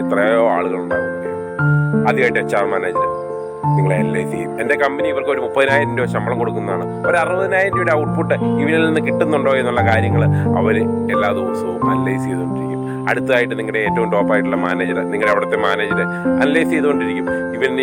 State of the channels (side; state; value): both; identical; correlation 1.00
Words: എത്രയോ ആളുകളുണ്ടാകും. ആദ്യമായിട്ട് HR മാനേജർ നിങ്ങളെ അനലൈസ് ചെയ്യും. എൻ്റെ കമ്പനി ഇവർക്ക് ഒരു 30,000 രൂപ ശമ്പളം കൊടുക്കുന്നതാണ്, ഒരു 60,000 രൂപയുടെ ഔട്ട്പുട്ട് ഇവരിൽ നിന്ന് കിട്ടുന്നുണ്ടോ എന്നുള്ള കാര്യങ്ങൾ അവർ എല്ലാ ദിവസവും അനലൈസ് ചെയ്തുകൊണ്ടിരിക്കും. അടുത്തതായിട്ട് നിങ്ങളുടെ ഏറ്റവും ടോപ്പായിട്ടുള്ള മാനേജർ, നിങ്ങളുടെ അവിടുത്തെ മാനേജർ അനലൈസ് ചെയ്തുകൊണ്ടിരിക്കും.